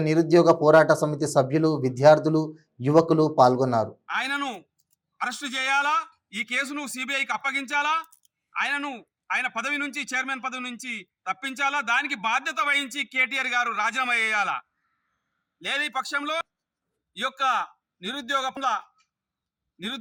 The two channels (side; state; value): both; identical; correlation 1.00